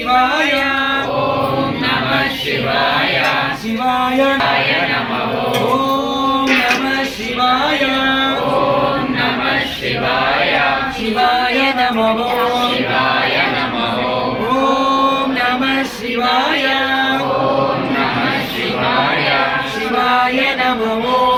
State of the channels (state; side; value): identical; both; correlation 1.00